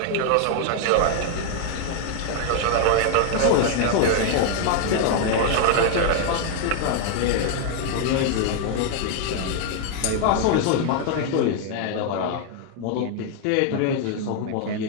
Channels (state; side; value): different; both; correlation 0.00